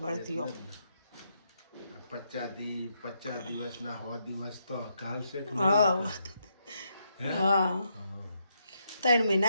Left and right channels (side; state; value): both; inverted; correlation -0.79